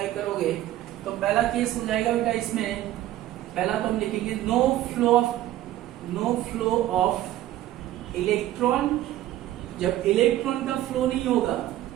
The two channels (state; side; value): quieter; left; 14.1 dB